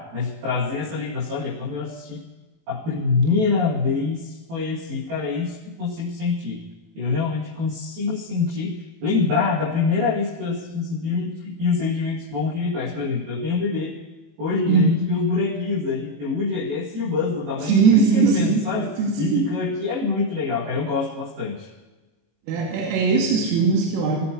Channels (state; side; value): late; left; 18 ms